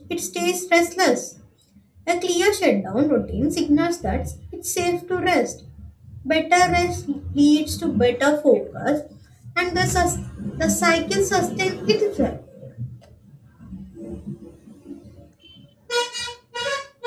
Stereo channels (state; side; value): identical; both; correlation 1.00